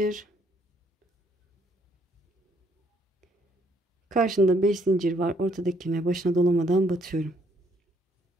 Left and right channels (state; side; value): normal; both; correlation 0.68